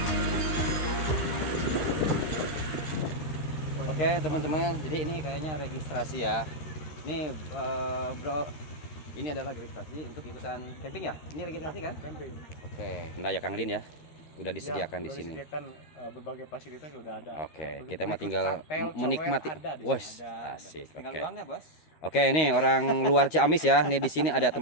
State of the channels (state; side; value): late; right; 13 ms